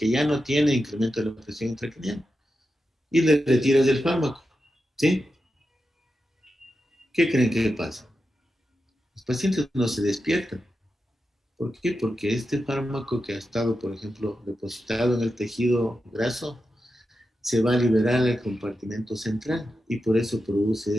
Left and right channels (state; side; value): normal; both; correlation 0.89